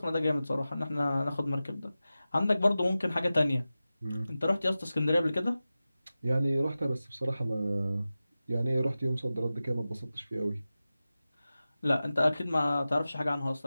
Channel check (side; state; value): both; inverted; correlation -0.95